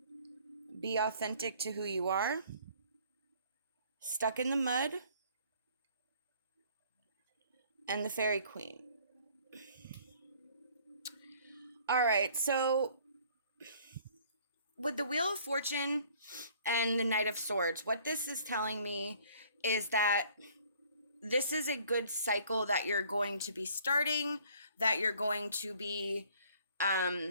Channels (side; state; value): both; inverted; correlation -0.57